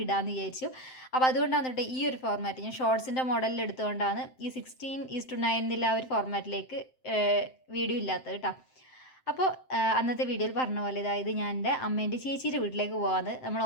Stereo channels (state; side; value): late; right; 7.7 ms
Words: ഇടാമെന്ന് വിചാരിച്ചു. അപ്പോൾ അതുകൊണ്ടാണ് കേട്ടോ ഈ ഒരു ഫോർമാറ്റ് ഞാൻ ഷോർട്സിൻ്റെ മോഡലിൽ എടുത്തുകൊണ്ടാണ് ഈ 16:9 എന്നുള്ള ആ ഒരു ഫോർമാറ്റിലേക്ക് വീഡിയോ ഇല്ലാത്തത് കേട്ടോ. അപ്പോൾ അന്നത്തെ വീഡിയോയിൽ പറഞ്ഞ പോലെ അതായത് ഞാൻ എൻ്റെ അമ്മേൻ്റെ ചേച്ചിയുടെ വീട്ടിലേക്ക് പോകാമെന്ന് നമ്മൾ